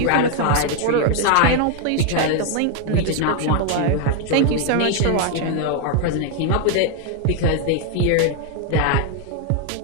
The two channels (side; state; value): both; different; correlation 0.00